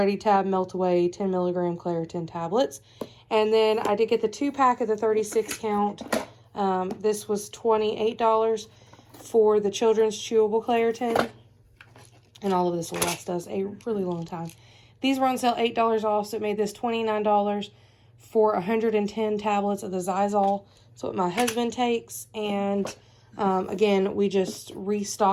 Tab Melt Away 10 milligram Claritin tablets. And then I did get the 2-pack of the 36 count. This was $28 for the children's chewable Claritin. And all of this will last us a really long time. These were on sale $8 off, so it made this $29 for 110 tablets of the Zizal. That's what my husband takes. And again, we just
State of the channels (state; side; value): identical; both; correlation 1.00